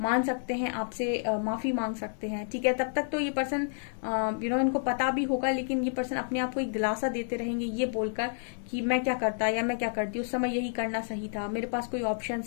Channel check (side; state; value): right; silent; 58 dB below the other